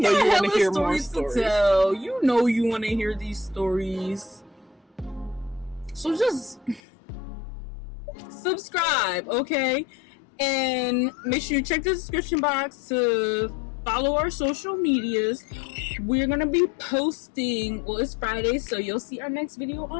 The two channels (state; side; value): drops out; right; at 6.8 s